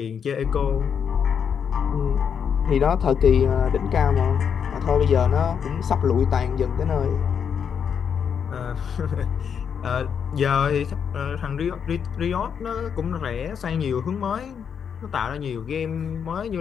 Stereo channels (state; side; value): quieter; right; 7.3 dB